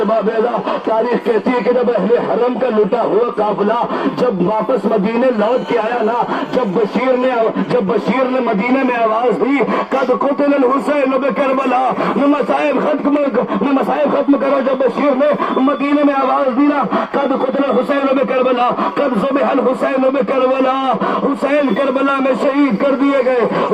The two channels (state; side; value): identical; both; correlation 1.00